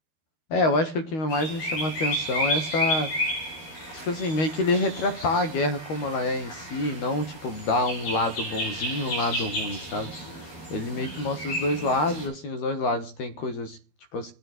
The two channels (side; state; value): right; late; 13 ms